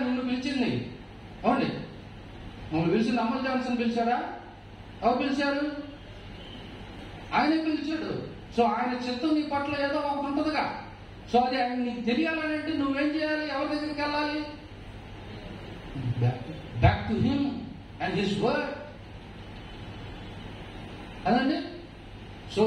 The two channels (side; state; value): both; identical; correlation 1.00